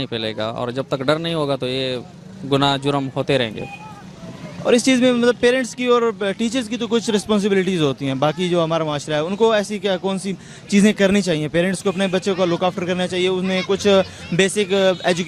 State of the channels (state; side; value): identical; both; correlation 1.00